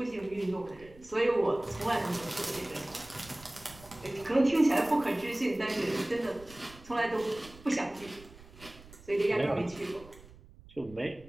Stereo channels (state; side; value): noise; right; rumble, 21 dB below the sound